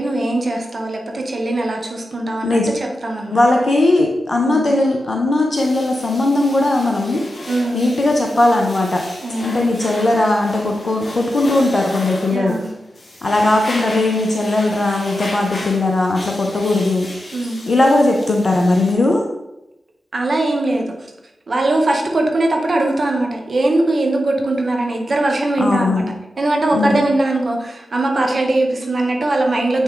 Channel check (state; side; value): normal; both; correlation 0.89